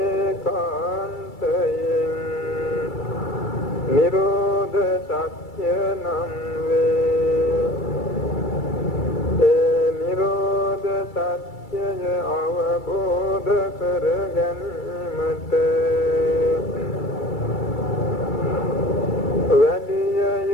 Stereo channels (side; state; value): right; late; 2.3 ms